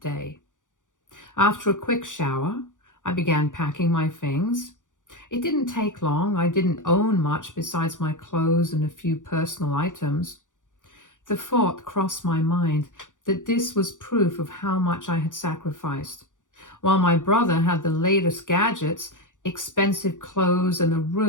day. After a quick shower, I began packing my things. It didn't take long. I didn't own much besides my clothes and a few personal items. The thought crossed my mind that this was proof of how much I had sacrificed. While my brother had the latest gadgets, expensive clothes, and a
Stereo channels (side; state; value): right; late; 0.87 ms